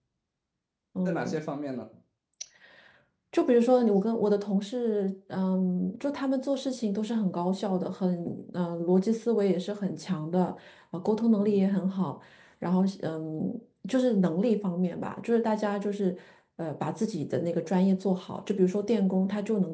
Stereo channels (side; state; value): both; identical; correlation 1.00